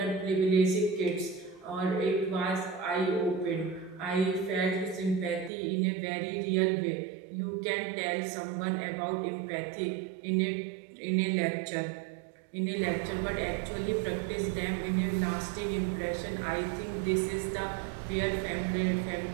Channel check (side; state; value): left; drops out; at 5.5 s